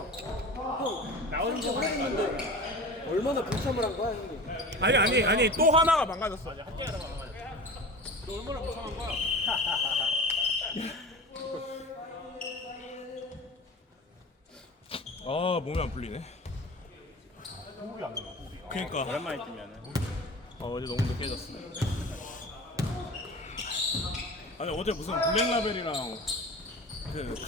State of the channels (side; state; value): both; normal; correlation 0.35